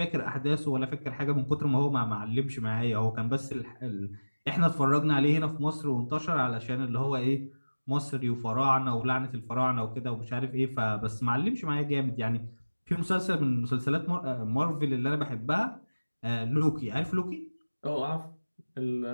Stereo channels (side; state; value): both; inverted; correlation -1.00